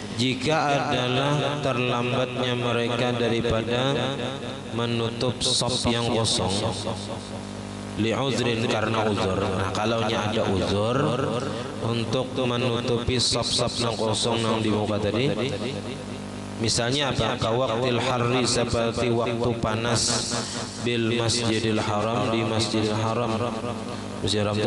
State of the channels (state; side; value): noise; right; hum, 28 dB below the sound